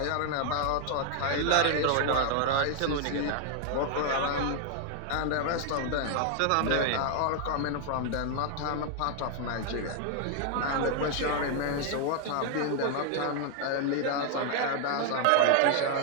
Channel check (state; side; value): different; both; correlation 0.00